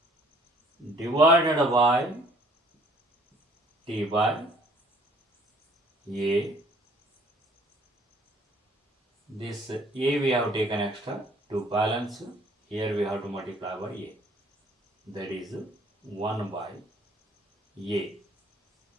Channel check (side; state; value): both; normal; correlation 0.59